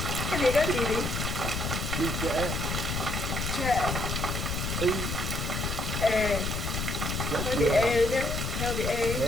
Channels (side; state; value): left; noise; rumble, 2 dB below the sound